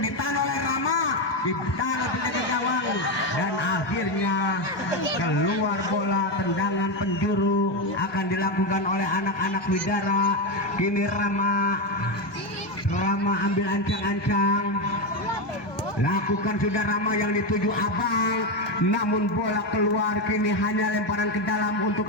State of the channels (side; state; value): right; late; 1.2 ms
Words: ditahan oleh Rama, ditahan oleh penjaga gawang, dan akhirnya keluar bola. Tendangan penjuru akan dilakukan oleh anak-anak Widara. Kini Rama ambil ancang-ancang. Lakukan sudah Rama yang dituju Abang, namun bola keluar. Kini hanya lemparan ke dalam untuk